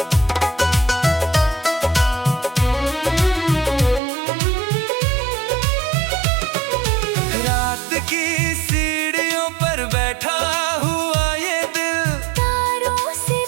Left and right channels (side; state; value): left; drops out; at 4.0 s